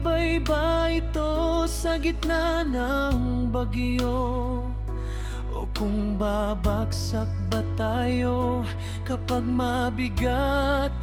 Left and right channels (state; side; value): identical; both; correlation 1.00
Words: ba ito sa gitna ng bagyo, o kung babagsak ba tayo kapag mabigat